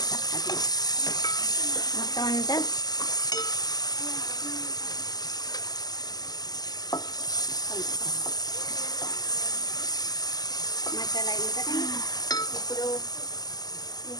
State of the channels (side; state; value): right; late; 0.19 ms